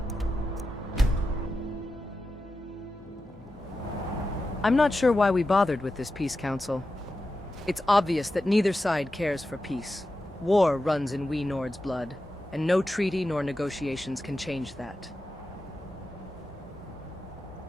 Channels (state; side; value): normal; both; correlation 0.91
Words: I'm not sure why we bothered with this peace council. It's obvious that neither side cares for peace. War runs in we Nord's blood, and no treaty nor negotiations can change that.